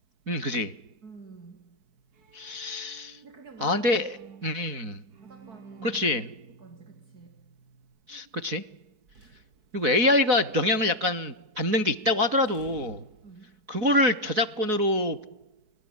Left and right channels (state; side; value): late; left; 4.6 ms